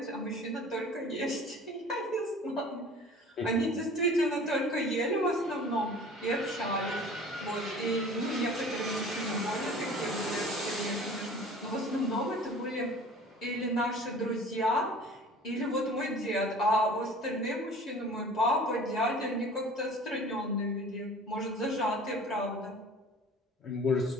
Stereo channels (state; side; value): normal; both; correlation 0.44